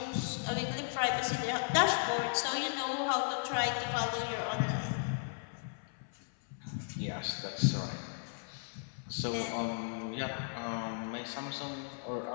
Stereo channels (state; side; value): silent; right; 54 dB below the other